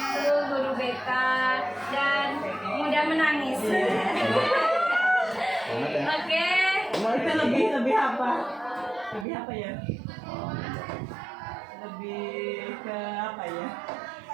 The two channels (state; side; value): drops out; left; at 9.2 s